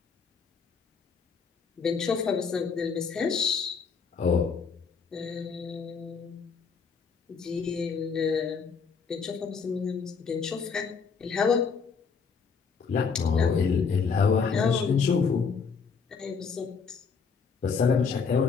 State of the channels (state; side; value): quieter; right; 5.6 dB